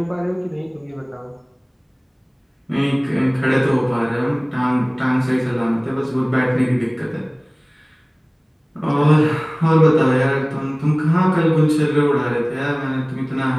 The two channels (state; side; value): identical; both; correlation 1.00